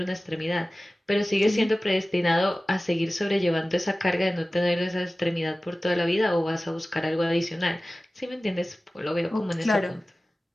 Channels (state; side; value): normal; both; correlation 0.97